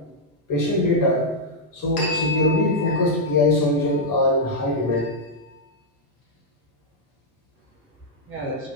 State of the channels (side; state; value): both; normal; correlation -0.04